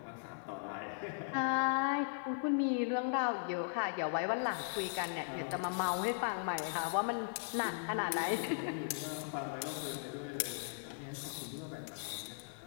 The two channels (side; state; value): right; silent; digital silence